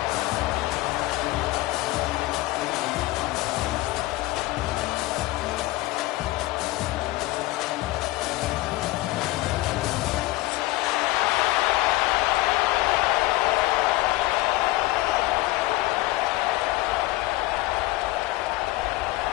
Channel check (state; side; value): quieter; right; 19.1 dB